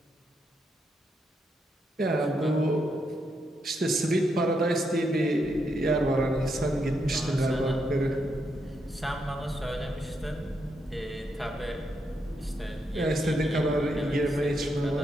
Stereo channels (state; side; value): normal; both; correlation 0.80